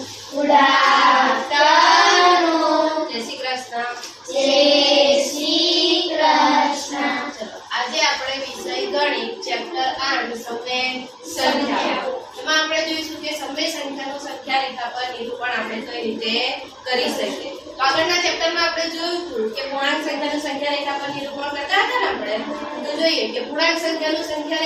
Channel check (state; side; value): identical; both; correlation 1.00